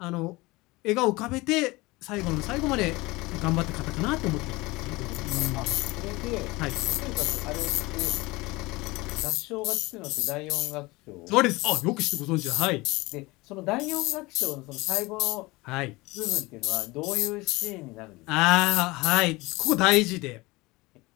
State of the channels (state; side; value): quieter; right; 22.3 dB